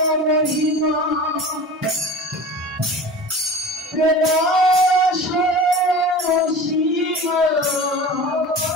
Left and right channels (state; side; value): normal; both; correlation 0.36